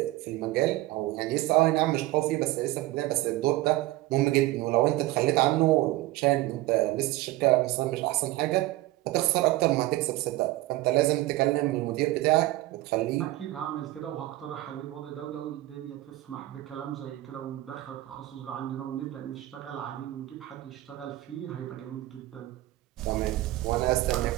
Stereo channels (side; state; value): left; quieter; 17.3 dB